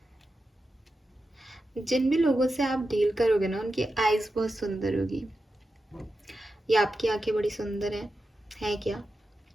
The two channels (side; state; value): both; normal; correlation 0.90